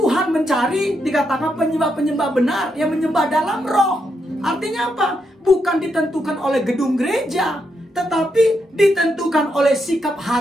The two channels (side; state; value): both; normal; correlation 0.81